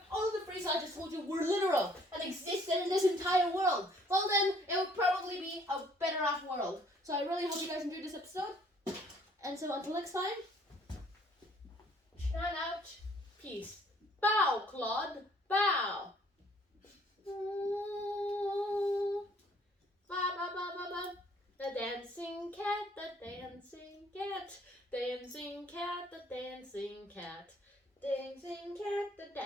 all the phrases I just told you were literal and existed in this entire world? Well then, it would probably be a better off world. So I really hope you guys enjoyed this episode. And so until next time, shine out, peace. Bow, Claude, bow. Ba ba ba ba ba. The dancing cat, the dancing cat, dancing cat, the dancing cat, dancing cat, the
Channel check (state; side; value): normal; both; correlation 0.60